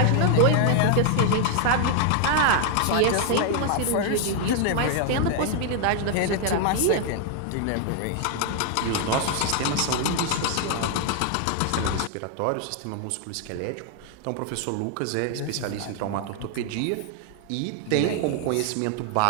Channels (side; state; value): both; different; correlation 0.00